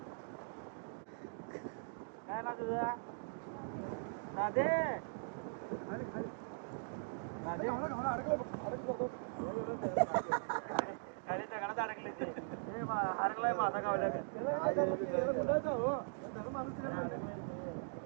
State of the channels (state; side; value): silent; left; digital silence